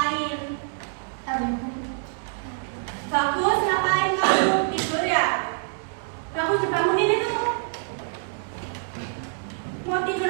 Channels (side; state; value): left; silent; 61 dB below the other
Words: Bagus, ngapain kamu? Tidur ya? Bagus, dibangunin itu. Mau tidur